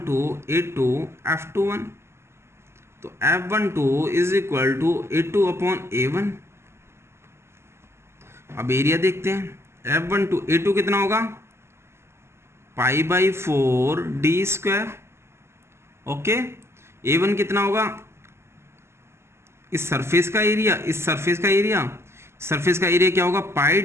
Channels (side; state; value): left; late; 0.12 ms